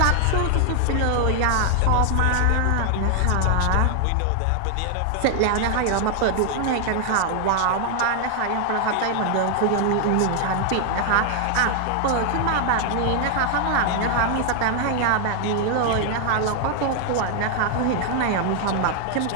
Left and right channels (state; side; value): different; both; correlation 0.00